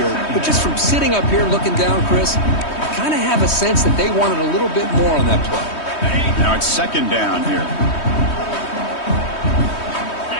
but just from sitting up here looking down, Chris, I kind of have a sense that they wanted a little bit more on that play. Now it's second down here.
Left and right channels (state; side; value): late; right; 3.2 ms